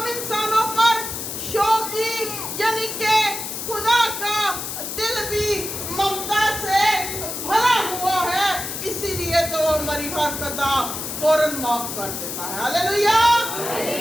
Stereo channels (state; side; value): noise; left; hiss, 6 dB below the sound